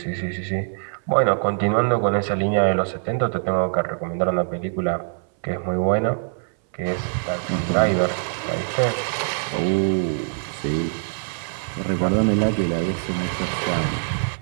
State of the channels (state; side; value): silent; left; 63 dB below the other